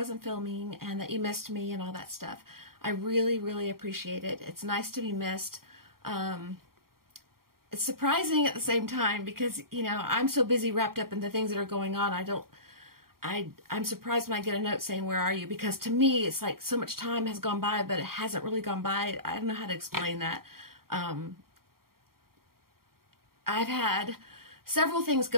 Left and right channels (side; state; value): left; late; 0.93 ms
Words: filming, and that you missed me and all that stuff. I really, really appreciate it. It's nice to be missed. It's surprising at the same time because, you know, I'm so busy wrapped up in the things that are going on. I'm surprised when I get a note saying, where are you? Because to me, it's like so much time has gone by, but it hasn't really gone by. I don't know how to explain that. I've had several things